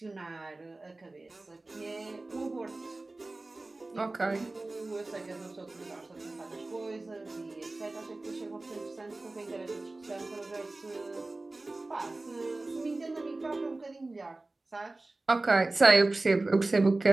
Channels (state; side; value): quieter; left; 3.0 dB